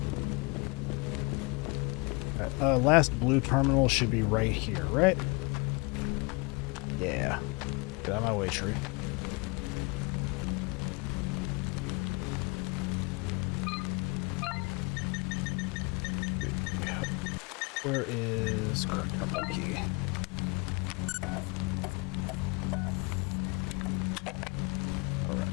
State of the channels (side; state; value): right; quieter; 28.8 dB